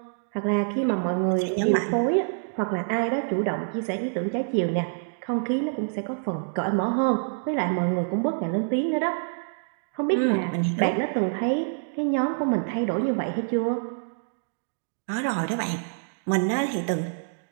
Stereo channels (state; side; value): silent; left; digital silence